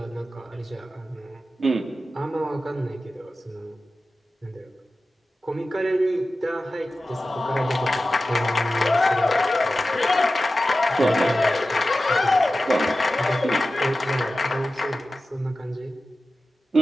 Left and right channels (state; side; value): normal; both; correlation 0.94